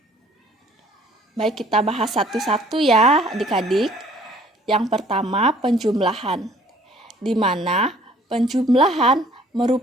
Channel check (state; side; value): normal; both; correlation 0.56